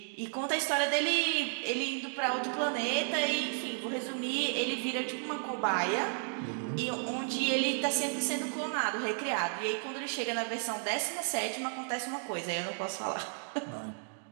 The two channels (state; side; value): silent; left; 56 dB below the other